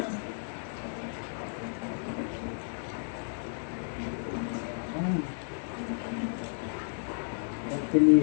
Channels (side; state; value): right; silent; 56 dB below the other